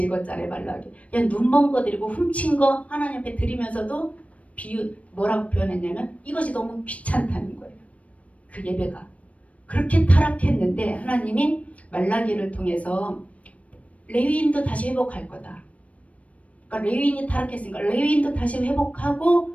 읽었잖아요. 말라기. 그냥 눈먼 거 드리고 훔친 거 하나님 앞에 드리면서도 뭐라고 표현했냐면 이것이 너무 귀찮다는 거예요. 그 예배가. 그렇게 타락했는데 하나님이 말라기를 통해서 레위인도 다시 회복할 거다. 그러니까 레위인이 타락했으니까 레위인도 다시 회복하고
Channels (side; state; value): right; late; 0.066 ms